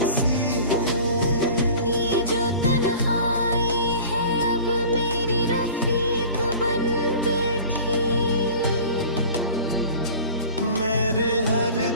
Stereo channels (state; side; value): inverted; both; correlation -0.41